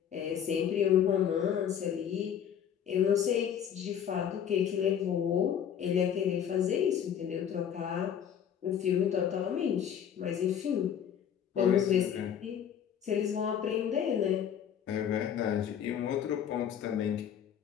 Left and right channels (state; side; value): quieter; right; 8.9 dB